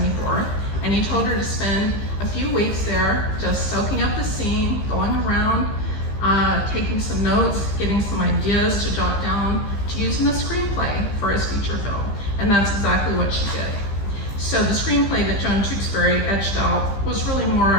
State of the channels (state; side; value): late; right; 15 ms